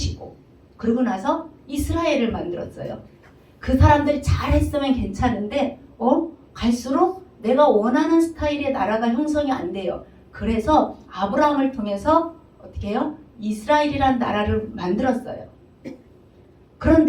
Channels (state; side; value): identical; both; correlation 1.00